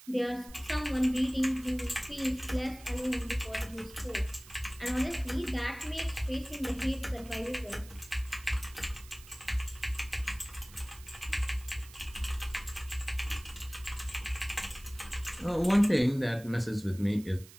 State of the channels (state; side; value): noise; right; hiss, 20 dB below the sound